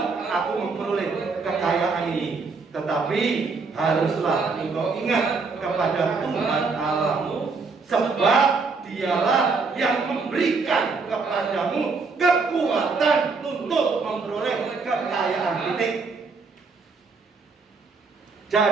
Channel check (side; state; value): left; quieter; 4.4 dB